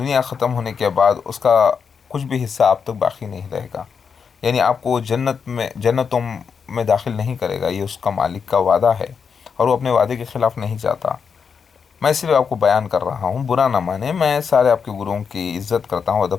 ختم ہونے کے بعد اس کا کچھ بھی حصہ آپ تک باقی نہیں رہے گا، یعنی آپ کو جنتوں میں داخل نہیں کرے گا، یہ اس کا مالک کا وعدہ ہے، اور وہ اپنے وعدے کے خلاف نہیں جاتا۔ میں صرف آپ کو بیان کر رہا ہوں، برا نہ مانے، میں سارے آپ کے گروؤں کی عزت کرتا ہوں،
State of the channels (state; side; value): quieter; right; 6.2 dB